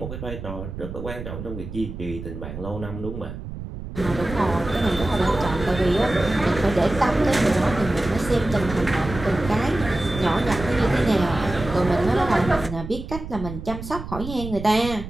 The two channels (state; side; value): noise; right; rumble, 9 dB below the sound